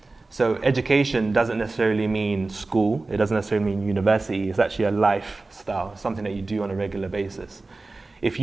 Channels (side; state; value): left; quieter; 3.4 dB